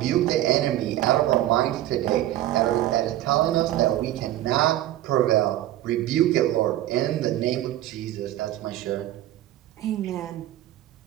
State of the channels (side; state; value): left; quieter; 14.1 dB